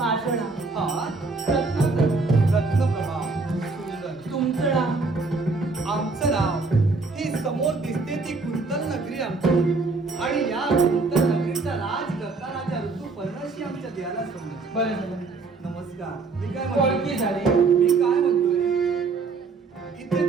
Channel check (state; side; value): quieter; left; 4.0 dB